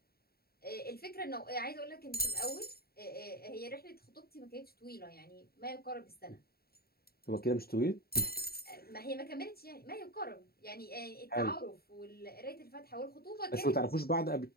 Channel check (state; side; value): late; right; 0.45 ms